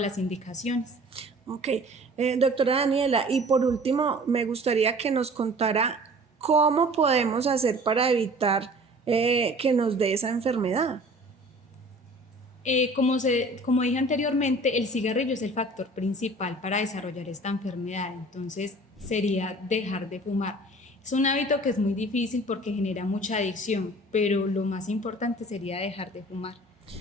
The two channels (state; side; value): normal; both; correlation 0.46